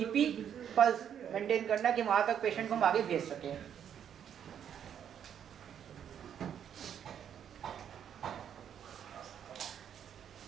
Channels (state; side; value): quieter; left; 8.9 dB